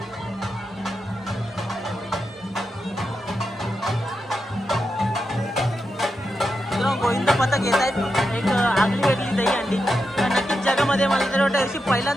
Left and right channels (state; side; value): normal; both; correlation 0.87